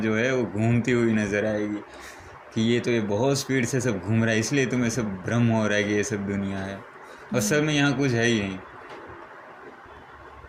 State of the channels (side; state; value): both; identical; correlation 1.00